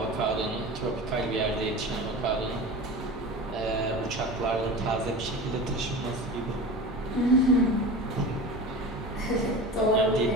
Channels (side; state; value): both; normal; correlation 0.32